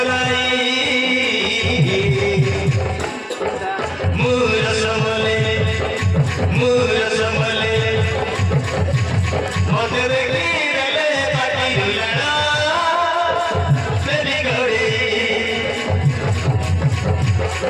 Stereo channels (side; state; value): both; identical; correlation 1.00